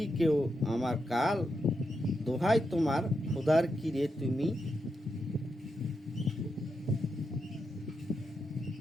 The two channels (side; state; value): both; normal; correlation 0.85